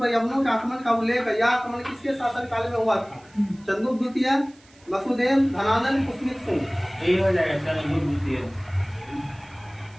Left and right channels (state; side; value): noise; right; hiss, 29 dB below the sound